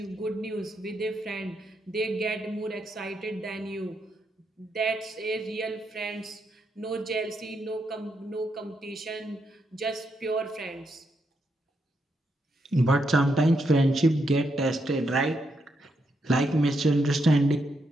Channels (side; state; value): both; normal; correlation 0.80